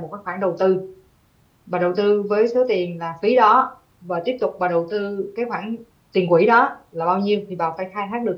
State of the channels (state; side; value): identical; both; correlation 1.00